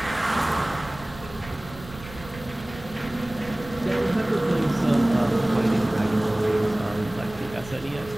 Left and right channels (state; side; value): noise; right; rumble, 17 dB below the sound